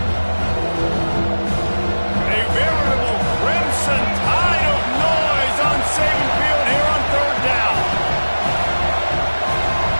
A veritable Crimson Tide of noise on Saban Field here on third down.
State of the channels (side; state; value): both; inverted; correlation -1.00